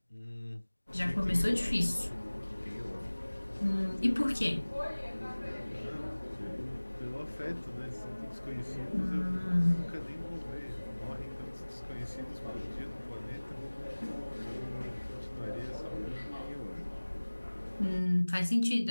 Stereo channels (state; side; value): inverted; both; correlation -1.00